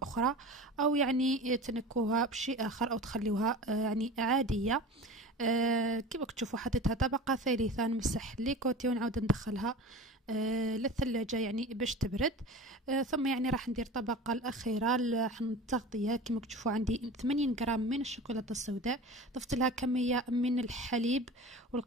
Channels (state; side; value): normal; both; correlation 0.35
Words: أخرى، أو يعني تنكوها بشيء آخر أو تخليوها يعني عادية. كما تشوفوا حطيتها طبقة ثالثة. نمسح لي كوتي ونعاود ندخلها للثلاجة يعني باش تبرد. ثم يعني راح ندير الطبقة الأخيرة التغطية. كما تشوفوا عندي 80 غرام من الشوكولاتة السوداء. ضفت لها كمية من الحليب